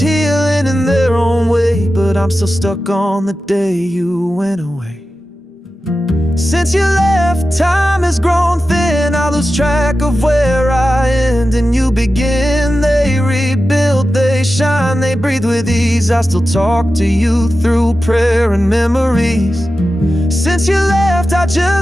in their own way, but I'm still stuck on the day you went away. Since you left, time has grown thin. I lose track of where I end and you begin. They rebuild, they shine, they breathe with ease. I still talk to you through prayer and memories. Since you left, I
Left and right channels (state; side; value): normal; both; correlation 0.93